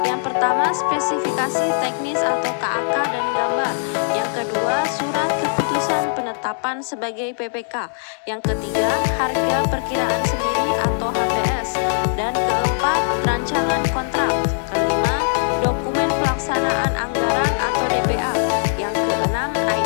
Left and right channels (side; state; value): right; silent; digital silence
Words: pertama spesifikasi teknis atau KAK dan gambar, yang kedua surat keputusan penetapan sebagai PPK, yang ketiga harga perkiraan sendiri atau HPS, dan keempat rancangan kontrak, kelima dokumen pelaksanaan anggaran atau DPA, yang keenam